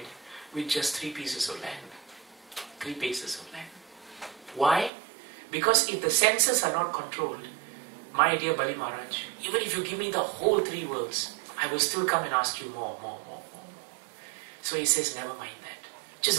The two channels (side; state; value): left; drops out; at 4.9 s